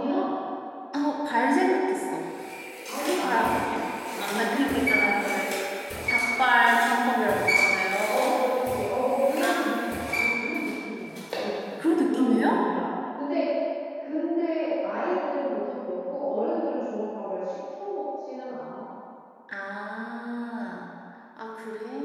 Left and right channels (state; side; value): identical; both; correlation 1.00